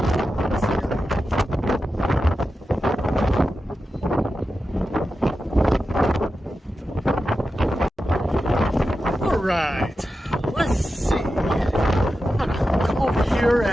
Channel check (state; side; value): normal; both; correlation 0.91